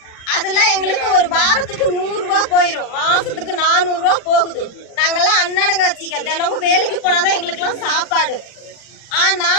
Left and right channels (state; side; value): late; right; 39 ms